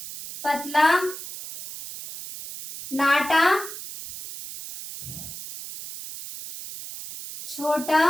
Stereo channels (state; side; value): noise; right; hiss, 11 dB below the sound